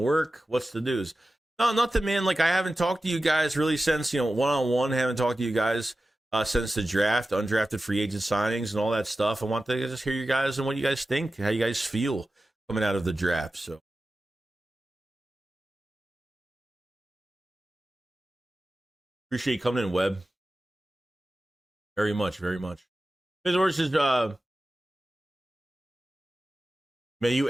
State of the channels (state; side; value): normal; both; correlation 0.94